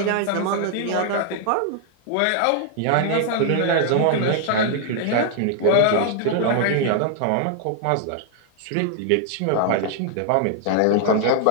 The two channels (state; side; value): different; both; correlation 0.00